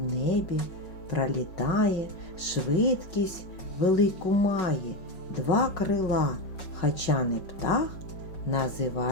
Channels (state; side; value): late; right; 5.5 ms